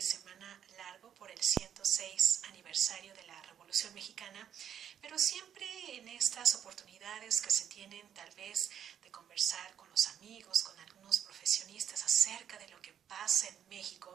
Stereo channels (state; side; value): quieter; left; 9.2 dB